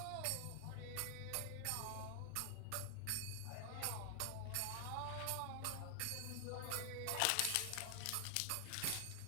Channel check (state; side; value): different; both; correlation 0.00